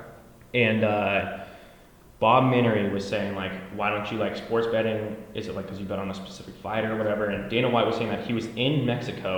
And Bob Menery was saying like, why don't you like sports betting? Is it like because you bet on a specific fighter or whatever? And Dana White was saying that he was in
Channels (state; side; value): identical; both; correlation 1.00